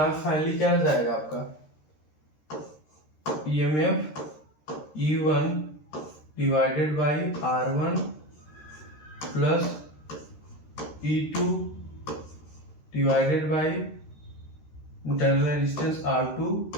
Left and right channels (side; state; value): right; late; 13 ms